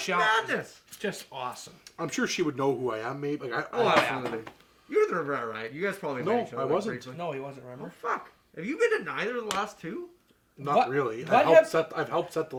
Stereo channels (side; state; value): both; identical; correlation 1.00